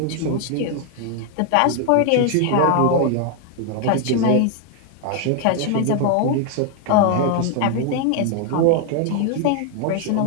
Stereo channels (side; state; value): both; different; correlation 0.00